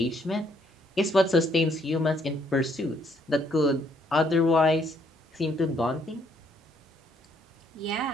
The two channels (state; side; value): normal; both; correlation 0.69